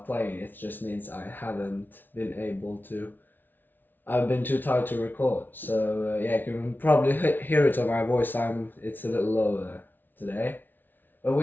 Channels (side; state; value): right; late; 0.091 ms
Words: playing. It just means I haven't been able to. I've been too tired to record. So yeah, you can probably hear it on my voice. It's a little lower today. But